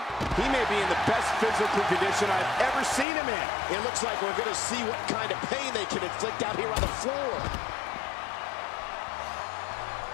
He may be in the best physical condition I've ever seen him in. It looks like we're going to see what kind of pain they can inflict out here on the floor.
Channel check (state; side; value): drops out; right; at 3.1 s